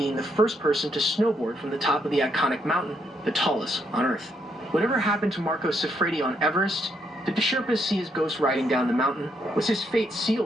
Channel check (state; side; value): normal; both; correlation 0.75